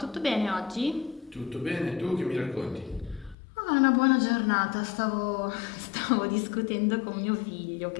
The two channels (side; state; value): right; drops out; at 3.4 s